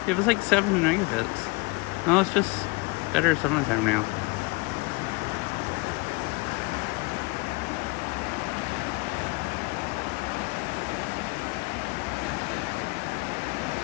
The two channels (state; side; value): quieter; right; 26.9 dB